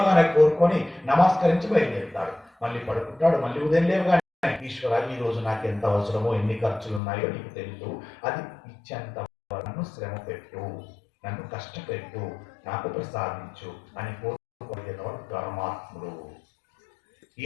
కోరుకొని నమస్కరించి బయలుదేరుతాడు. మళ్ళీ పడుకుంటాడు, మళ్ళీ ఉదయం లేవగానే ఈశ్వర ఈ రోజు నాకు ఎంత అవసరమో ఎన్ని ఖర్చులు ఉన్నాయో నీకు తెలుసు, అది ఇచ్చేంత నన్ను శ్రమ పెట్టు, నన్ను కష్టపెట్టు, నాకు ప్రసాదించు అని కోరుకునేవాడు ధర్మాత్ముడు. ఈ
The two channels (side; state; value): right; drops out; at 7.0 s